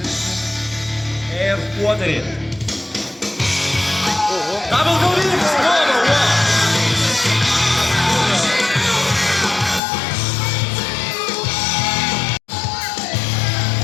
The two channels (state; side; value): drops out; right; at 9.8 s